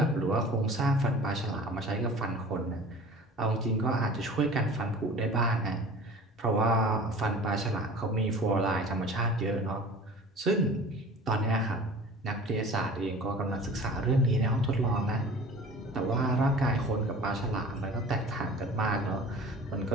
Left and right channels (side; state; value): both; normal; correlation 0.42